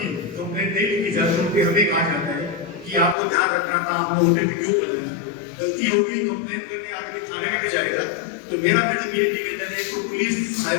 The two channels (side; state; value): right; drops out; at 3.2 s